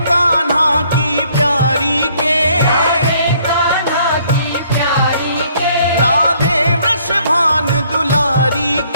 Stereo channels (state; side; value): inverted; both; correlation -0.64